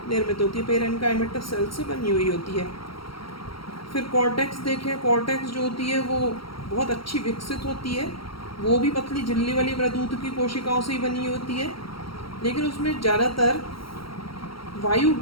निर्मित होती है, पेरेन्काइमेटस सेल से बनी हुई होती है। फिर कॉर्टेक्स देखें, कॉर्टेक्स जो होती है वो बहुत अच्छी विकसित होती है, वो भी पतली झिल्ली वाली मृदुत की कोशिकाओं से ही बनी होती है, लेकिन उसमें ज़्यादातर वायु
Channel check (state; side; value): late; right; 0.74 ms